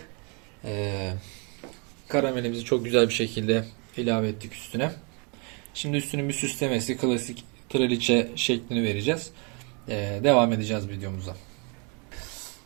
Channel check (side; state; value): left; quieter; 34.3 dB